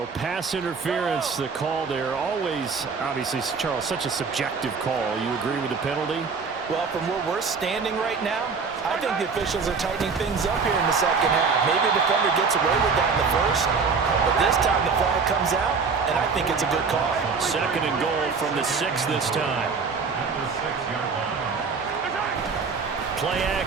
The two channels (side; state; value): left; quieter; 5.1 dB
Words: pass interference, the call there. Always, obviously, Charles, such a subjective call. You agree with the penalty? Well, from where we're standing right now, I think the officials are tightening things up here in the second half. Maybe a defender gets away with that in the first, but this time the flag comes out, and I think it's a good call. 2nd and goal from the 6 this time. Play